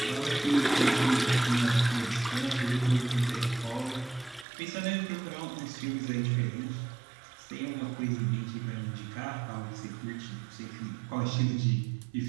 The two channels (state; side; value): drops out; left; at 4.5 s